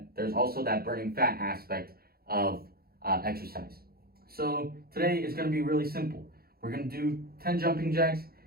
there's also that burning fat aspect of exercise. So today is going to be really simple. We're going to do 10 jumping jacks,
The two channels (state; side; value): late; left; 0.44 ms